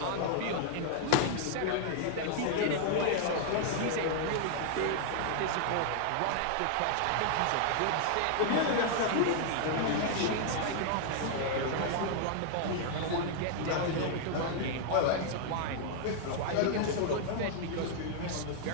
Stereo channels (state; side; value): different; both; correlation 0.00